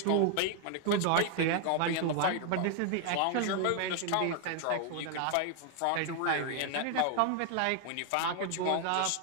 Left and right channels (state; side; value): different; both; correlation 0.00